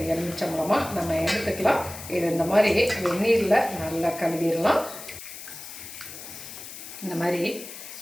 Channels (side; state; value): left; noise; hiss, 12 dB below the sound